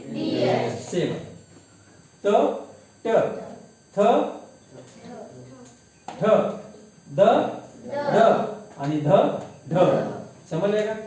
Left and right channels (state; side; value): identical; both; correlation 1.00